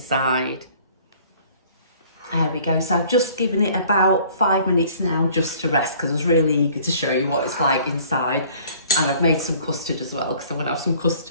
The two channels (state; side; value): inverted; both; correlation -0.53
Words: There we go. So I've just given it about 5 minutes now just to rest, because I was really eager to show you what it's like inside. And I've made some custard as well, because I'm going to have some